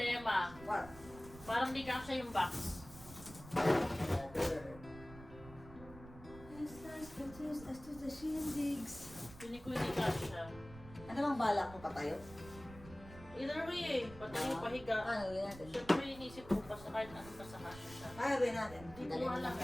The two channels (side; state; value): right; noise; rumble, 17 dB below the sound